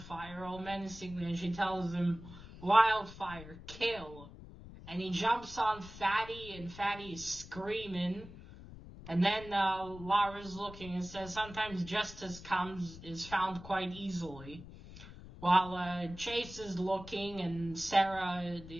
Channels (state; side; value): noise; left; rumble, 15 dB below the sound